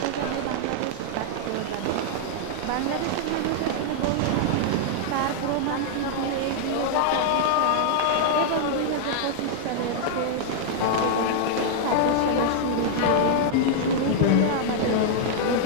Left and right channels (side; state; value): both; different; correlation -0.01